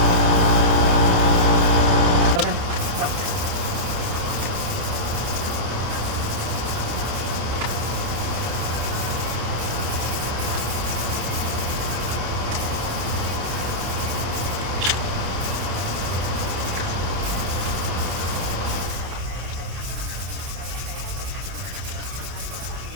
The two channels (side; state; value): left; late; 29 ms